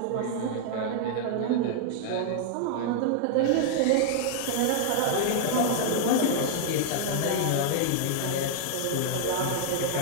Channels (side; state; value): both; different; correlation -0.01